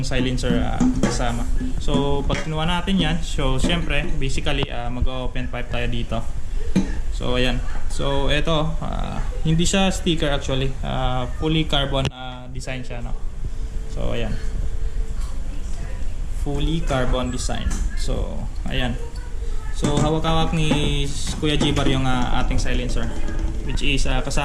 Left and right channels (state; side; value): identical; both; correlation 1.00